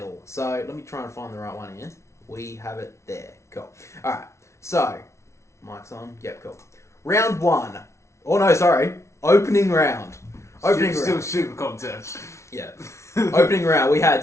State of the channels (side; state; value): right; late; 0.13 ms